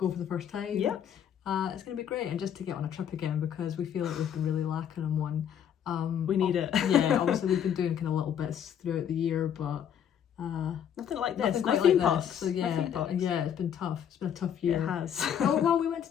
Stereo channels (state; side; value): quieter; right; 8.9 dB